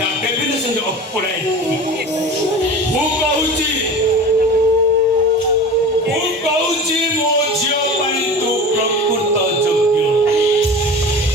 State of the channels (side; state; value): both; normal; correlation 0.35